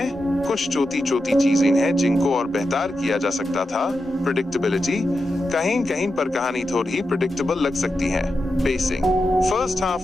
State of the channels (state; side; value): normal; both; correlation 0.89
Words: कुछ छोटी चीजें हैं जिनको और बेहतर किया जा सकता था। प्रेडिक्टेबिलिटी, कहीं कहीं पर कहानी थोड़ी प्रेडिक्टेबल लग सकती है। पेसिंग, फर्स्ट